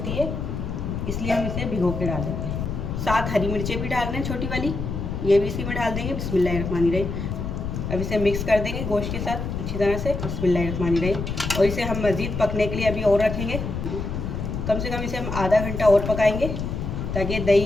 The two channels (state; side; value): noise; left; rumble, 4 dB below the sound